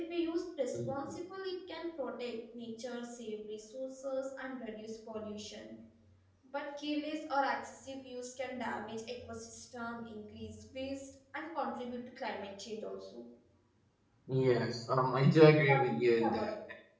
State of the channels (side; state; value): both; identical; correlation 1.00